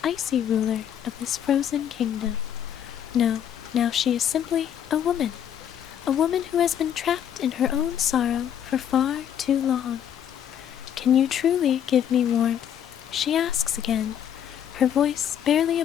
icy ruler of this frozen kingdom. No, now she is simply a woman who has been trapped in her own sorrow for far too long. "Can you truly give me warmth?" she asks again, her voice barely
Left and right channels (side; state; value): right; quieter; 9.5 dB